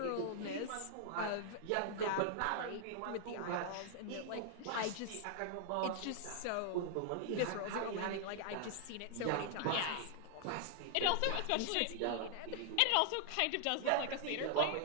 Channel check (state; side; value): different; both; correlation 0.00